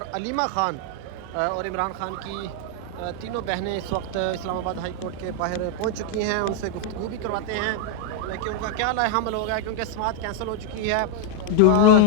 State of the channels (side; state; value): both; different; correlation 0.00